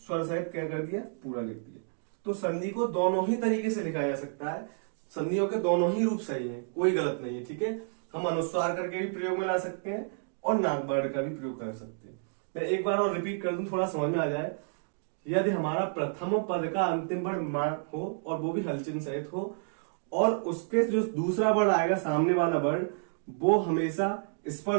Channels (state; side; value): silent; left; digital silence